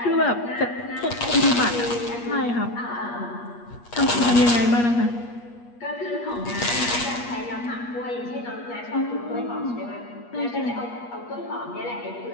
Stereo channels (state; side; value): late; right; 8.4 ms